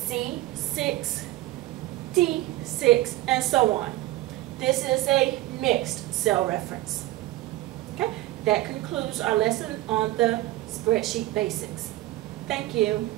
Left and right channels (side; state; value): left; quieter; 16.7 dB